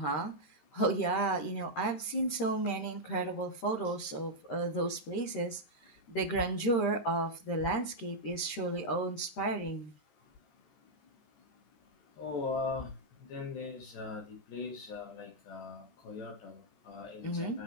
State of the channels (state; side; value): late; right; 13 ms